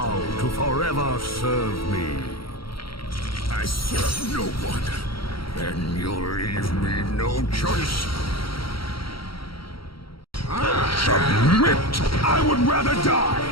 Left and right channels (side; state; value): right; late; 0.74 ms